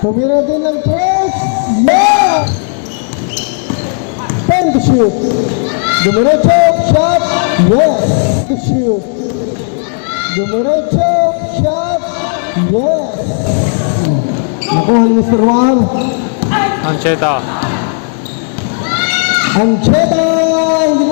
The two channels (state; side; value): silent; right; 61 dB below the other